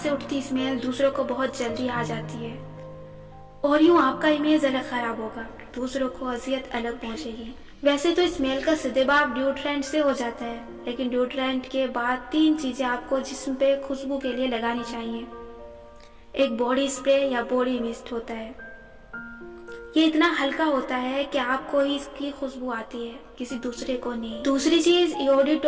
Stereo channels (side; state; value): both; identical; correlation 1.00